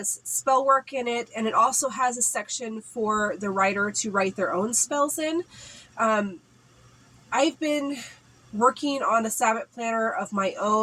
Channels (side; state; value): both; identical; correlation 1.00